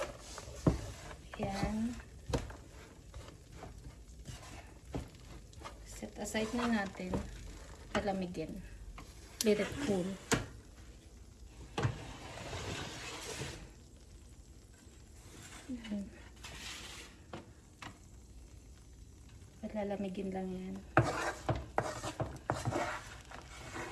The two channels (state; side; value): identical; both; correlation 1.00